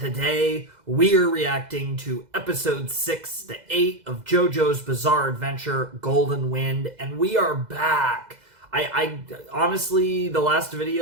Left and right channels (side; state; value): left; late; 2.0 ms